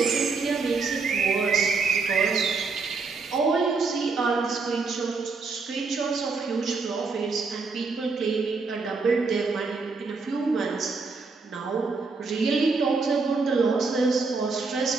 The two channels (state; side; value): quieter; left; 4.4 dB